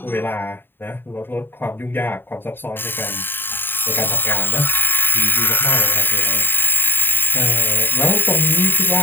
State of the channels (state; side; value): late; right; 0.098 ms